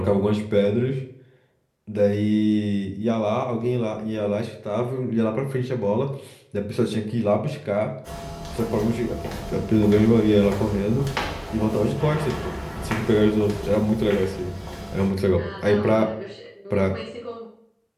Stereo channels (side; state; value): both; identical; correlation 1.00